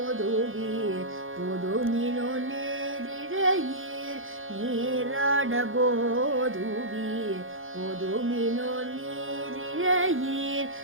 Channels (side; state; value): left; late; 0.59 ms